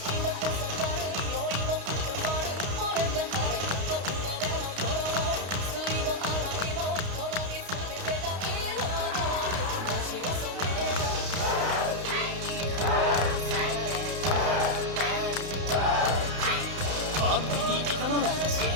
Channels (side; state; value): left; late; 32 ms